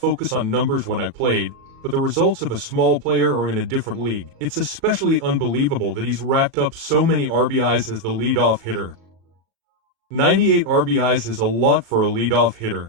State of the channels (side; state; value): left; late; 37 ms